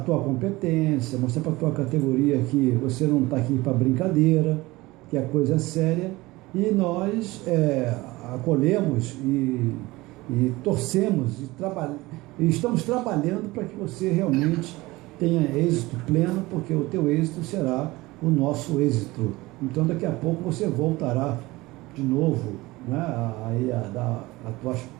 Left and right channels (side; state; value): left; quieter; 20.5 dB